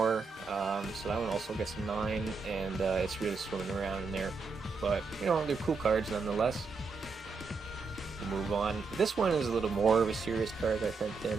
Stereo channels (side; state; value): left; quieter; 4.6 dB